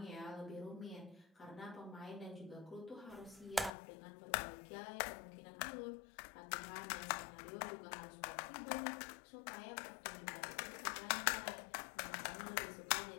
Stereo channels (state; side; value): drops out; right; at 3.7 s